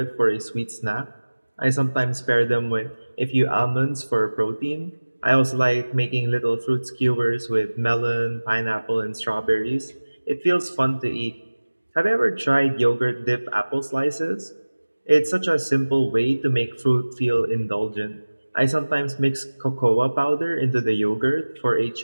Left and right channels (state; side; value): inverted; both; correlation -1.00